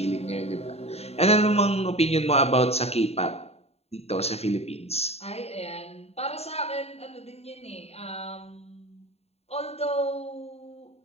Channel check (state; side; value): late; right; 0.30 ms